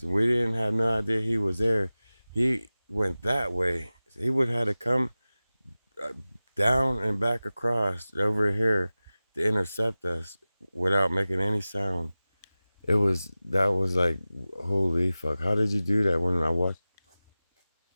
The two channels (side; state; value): both; inverted; correlation -0.97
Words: We didn't have no idea he was there. He went that way. He would have to come down and back across over here to intercept us without making any sound. That was like, holy fuck. How did you do that? When I